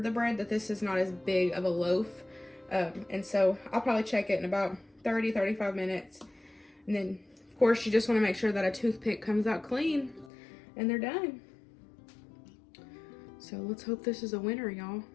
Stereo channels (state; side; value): drops out; right; at 10.3 s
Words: the bread that this is not as big of a loaf. And so I'll probably check it in about 30-35 minutes. And then, of course, you just want to make sure that a toothpick comes out clean and they're done. So let's hope this is a winner, y'all.